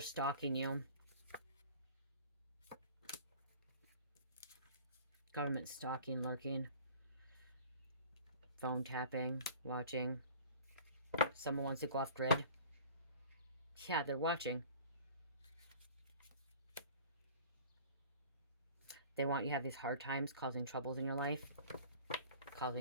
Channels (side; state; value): both; inverted; correlation -0.45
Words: you. Government stalking, lurking. Phone tapping, watching. Someone wants to go off grid. Yeah, they're watching. They want you to have these hard times, causing troubles in your life.